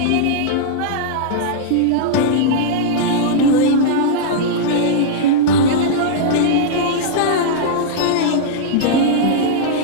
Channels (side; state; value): both; different; correlation -0.02